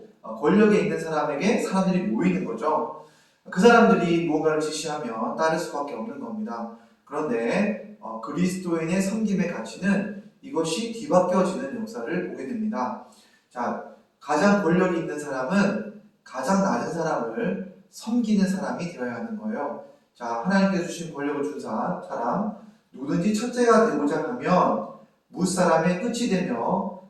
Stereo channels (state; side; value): identical; both; correlation 1.00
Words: 권력에 있는 사람에게 사람들이 모이는 거죠. 그 사람들이 무언가를 지시하면 따를 수밖에 없는 겁니다. 그런데 그리스도인의 섬김의 가치는 이것이 뒤바뀌어지는 역사를 보게 됩니다. 자, 가장 권력이 있는 사람은 가장 낮은 사람을 섬기는 사람이 되어야 하는 거예요. 자, 하나님께서 주신 권력을 준 사람, 누구든지 첫째가 되고자 하면 무사람의 끝이 되며